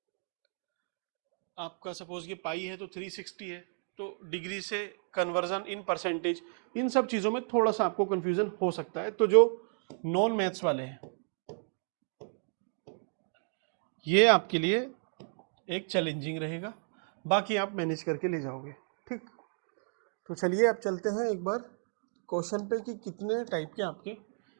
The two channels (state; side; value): silent; left; 56 dB below the other